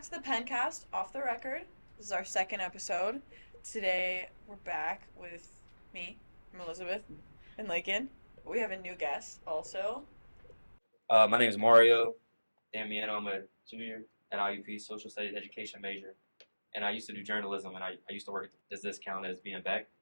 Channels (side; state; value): both; inverted; correlation -1.00